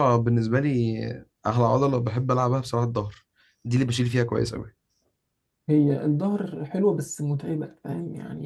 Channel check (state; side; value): identical; both; correlation 1.00